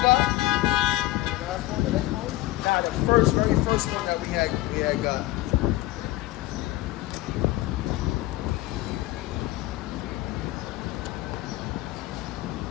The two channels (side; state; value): right; quieter; 17.2 dB